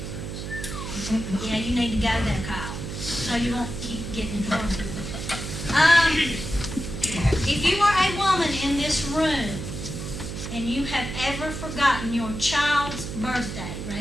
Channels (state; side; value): noise; right; hum, 7 dB below the sound